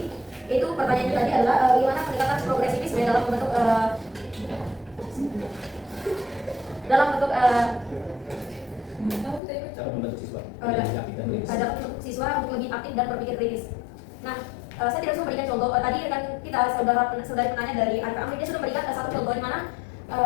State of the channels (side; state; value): right; drops out; at 9.4 s